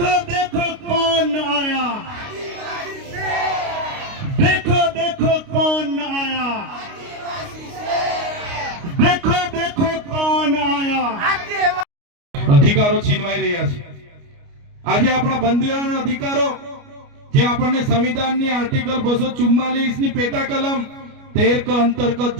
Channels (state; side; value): late; left; 29 ms